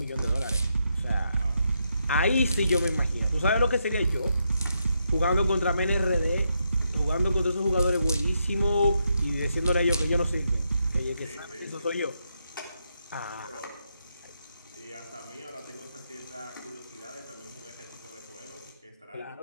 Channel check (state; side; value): inverted; both; correlation -0.81